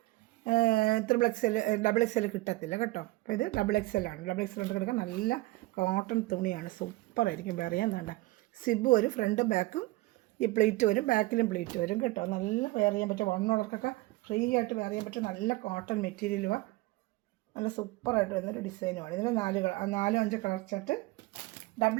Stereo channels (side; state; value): left; quieter; 20.3 dB